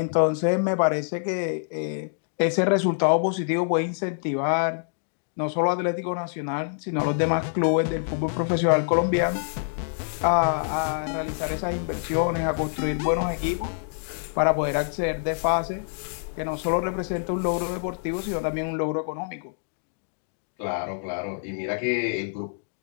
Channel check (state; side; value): silent; right; digital silence